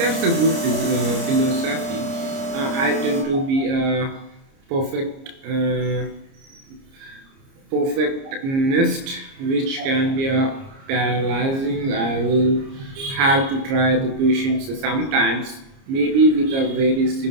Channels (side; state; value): left; late; 30 ms